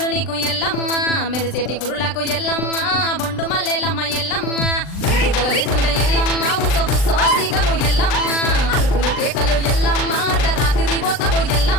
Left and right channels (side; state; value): right; late; 39 ms